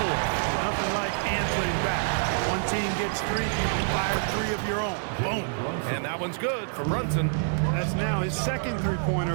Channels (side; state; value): left; silent; 57 dB below the other